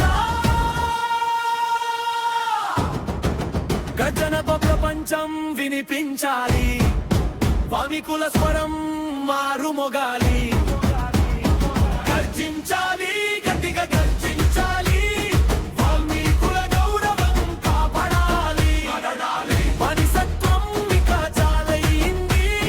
గర్జనతో ప్రపంచం వినిపించాలి, వామికుల స్వరం మారుమోగాలి. గర్జించాలి, గట్టిగా గర్జించాలి, వాల్మీకుల గౌరవం కాపాడాలి. మనిషత్వం ఇక చాలయింది,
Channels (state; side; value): identical; both; correlation 1.00